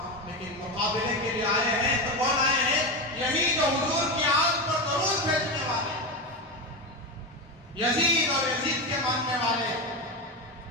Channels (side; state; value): both; normal; correlation 0.17